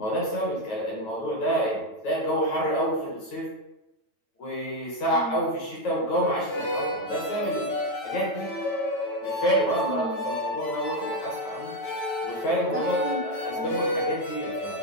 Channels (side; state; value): right; late; 9.0 ms